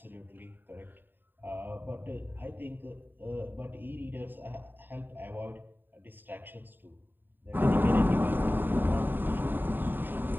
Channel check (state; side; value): late; left; 0.093 ms